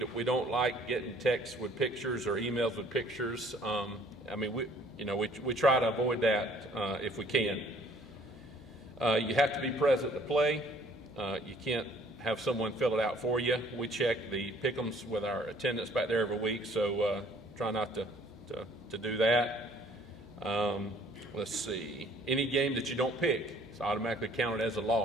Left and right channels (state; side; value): noise; right; hum, 28 dB below the sound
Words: don't like getting texts with pictures or emails with pictures. We try to avoid that if we can. You have to be present to play. You can't have someone fill it out for you. We check the pick'ems with our attendance back there every week, so try not to do that. Let's see. Any game that you don't pick is automatically counted as a